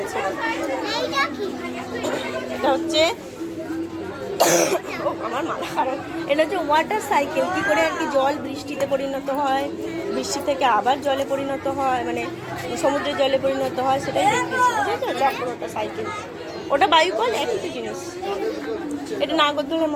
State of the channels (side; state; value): both; identical; correlation 1.00